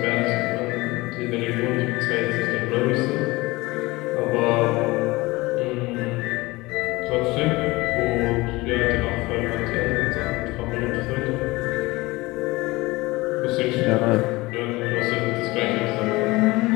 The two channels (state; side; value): quieter; right; 21.5 dB